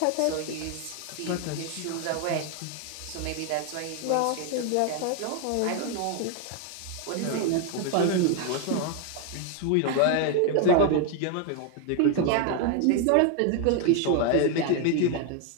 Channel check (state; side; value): different; both; correlation 0.01